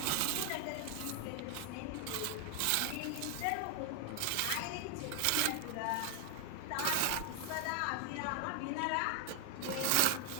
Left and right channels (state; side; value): different; both; correlation 0.00